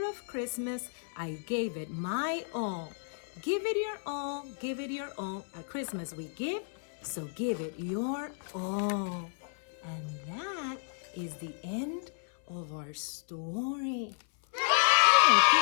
of Christmas, I gave it my all. Give it your all, give it your all. At Christmas we give, so give it your all." And that is the end of our story. I hope you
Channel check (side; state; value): right; silent; 55 dB below the other